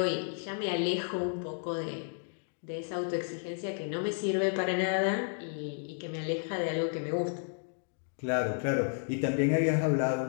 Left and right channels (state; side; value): silent; right; digital silence